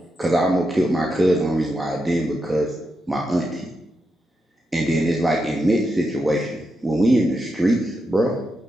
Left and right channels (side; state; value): both; normal; correlation 0.86